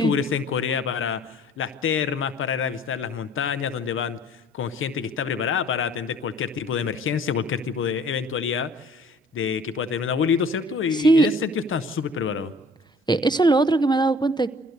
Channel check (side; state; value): both; normal; correlation 0.52